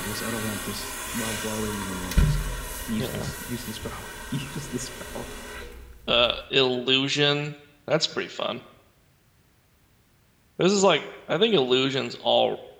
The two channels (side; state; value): both; identical; correlation 1.00